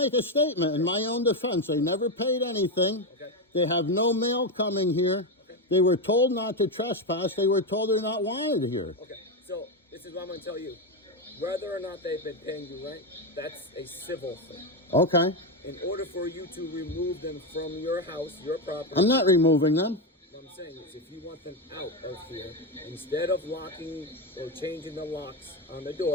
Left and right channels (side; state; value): both; normal; correlation 0.10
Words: a statement in my own defense. They never paid anything. Okay. They have no mail coming here. Okay. They were told not to trespass. They were told they're not wanted here. Okay, so this is what I'm going to tell you. Whether or not they've been paying you rent, that's a civil thing. Okay. In order for you to remove them from your house, your property... I'm not removing them. What I'm saying is, if you want them out of here, instead of locking or changing the locks on the